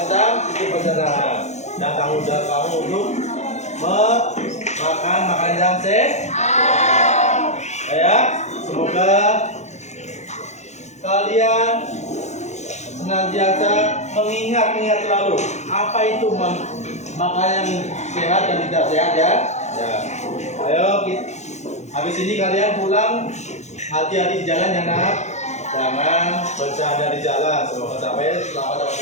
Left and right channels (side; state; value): right; late; 0.33 ms